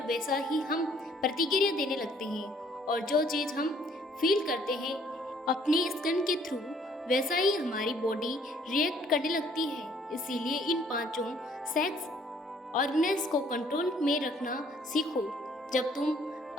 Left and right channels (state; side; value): normal; both; correlation 0.62